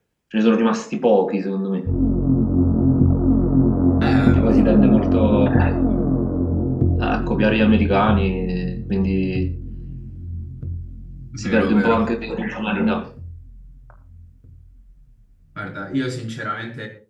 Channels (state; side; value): identical; both; correlation 1.00